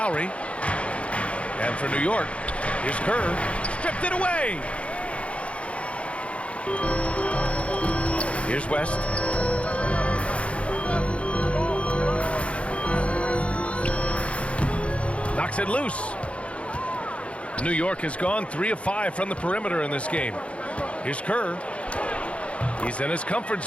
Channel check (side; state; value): right; late; 0.062 ms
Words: And for New York, here's Kerr. Stripped it away. Here's West. Knocks it loose. New York has gone 3 of 5 from the perimeter in this game. Here's Kerr. He's in his comfort